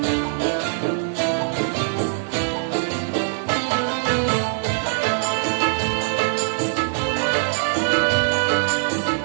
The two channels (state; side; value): silent; left; digital silence